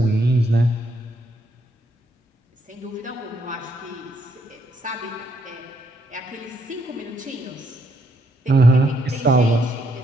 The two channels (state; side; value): normal; both; correlation 0.74